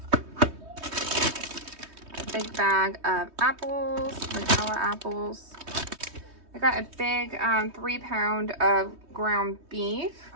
A big bag of apples, vanilla apples. I got a big 3 pound of ground beef.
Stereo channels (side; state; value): left; late; 3.2 ms